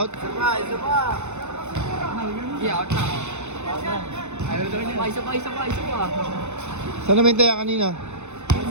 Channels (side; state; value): left; late; 0.83 ms